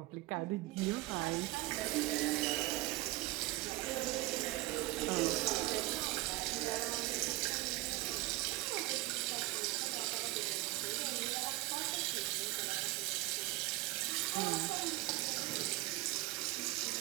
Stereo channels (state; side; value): quieter; left; 19.4 dB